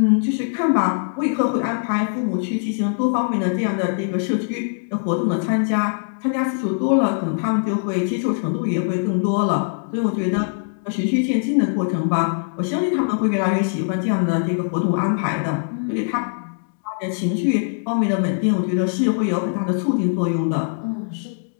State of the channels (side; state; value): right; silent; digital silence